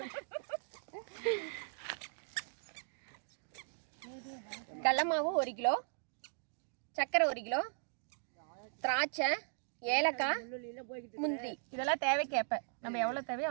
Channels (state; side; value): silent; left; digital silence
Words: கடலை மாவு 1 கிலோ, சர்க்கரை 1 கிலோ, திராட்சை, ஏலக்காய், முந்திரி, இதெல்லாம் தேவைக்கேற்ப நம்ம எவ்வளவு தேவையோ